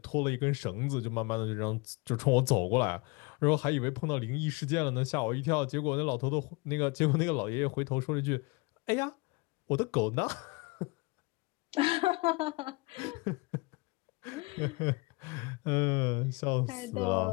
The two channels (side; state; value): right; quieter; 26.6 dB